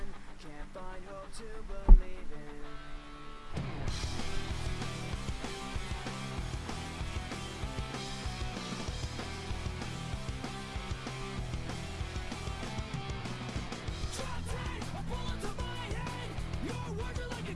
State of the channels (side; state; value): both; identical; correlation 1.00